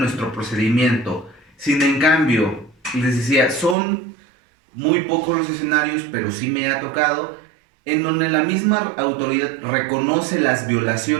procedimiento. Sin en cambio, les decía, son muy pocos los escenarios, pero sí me ha tocado, en donde la misma autoridad reconoce las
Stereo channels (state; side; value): drops out; left; at 3.8 s